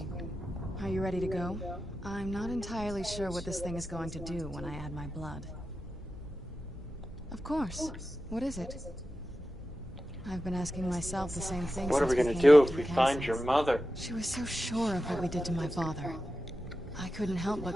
Are you ready to go? I'm not entirely sure what this thing is going to do when I add my blood. Of course. What is it? I've been asking myself the same thing. What are we since gonna came do back if to we the find castle. your mother? She was so sure of what we did to my father. I couldn't help but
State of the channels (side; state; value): both; normal; correlation 0.92